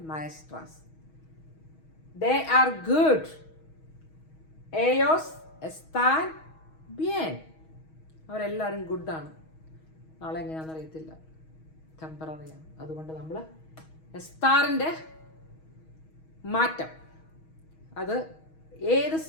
maestras. They are good, ellos están bien. അവരെല്ലാവരും ഗുഡാണ്. നാളെ എങ്ങനെയാണെന്ന് അറിയത്തില്ല, ടെമ്പററിയാണ്. അതുകൊണ്ട് നമ്മൾ എസ്താറിൻ്റെ മാറ്റം അത് ഏത്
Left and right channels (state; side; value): late; right; 6.3 ms